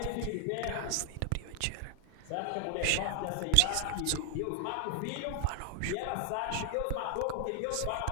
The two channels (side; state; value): both; different; correlation 0.00